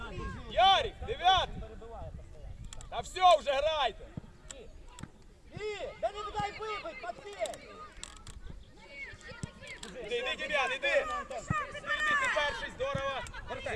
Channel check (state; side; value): identical; both; correlation 1.00